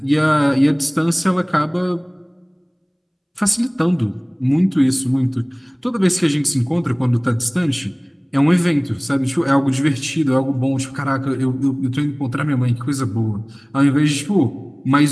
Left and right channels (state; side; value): identical; both; correlation 1.00